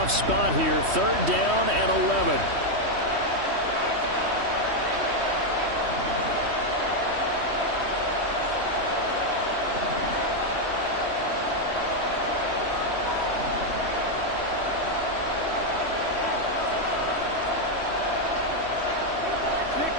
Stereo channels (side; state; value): left; late; 3.1 ms